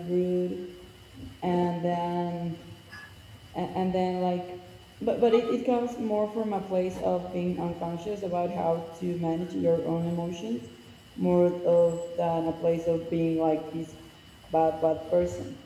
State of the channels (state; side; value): identical; both; correlation 1.00